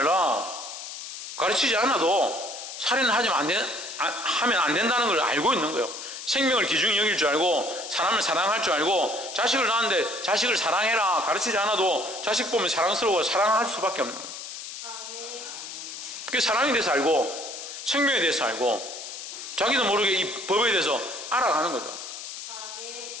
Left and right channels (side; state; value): left; noise; hiss, 10 dB below the sound